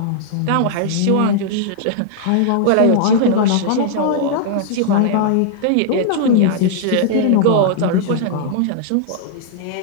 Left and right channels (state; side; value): different; both; correlation -0.01